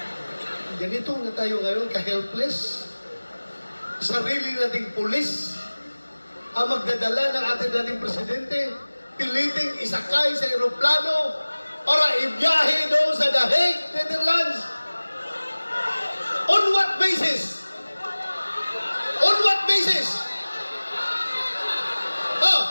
ganito na tayo ngayon, ka-helpless. Sarili nating pulis ang magdadala ng ating dating presidente, piliting isakay sa aeroplano para ibiyahe doon sa The Hague, Netherlands. On what basis? On what basis?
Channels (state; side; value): inverted; both; correlation -1.00